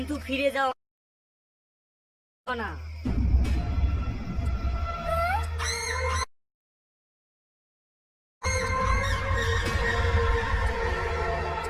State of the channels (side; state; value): both; identical; correlation 1.00